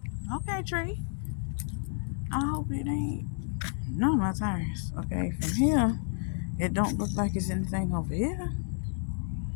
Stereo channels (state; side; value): silent; right; 57 dB below the other